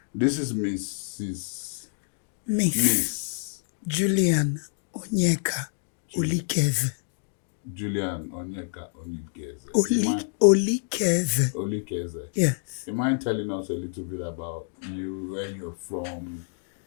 This is Miss Miss Julian Onyeka Olikaeze. Julian Onyeka Olikaeze. Olikaeze. Olikaeze. Yes. You mind telling us a little bit about you, where you're from?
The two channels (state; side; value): silent; right; digital silence